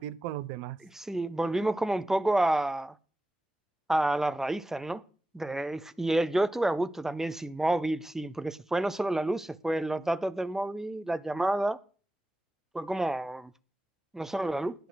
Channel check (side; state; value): both; normal; correlation 0.95